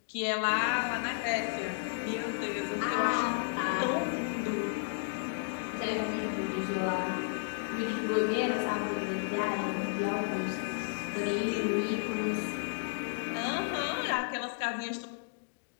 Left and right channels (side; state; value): right; silent; digital silence